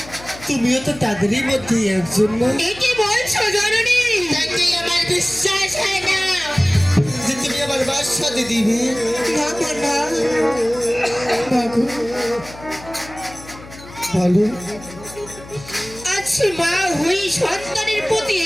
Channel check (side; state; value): left; noise; hum, 18 dB below the sound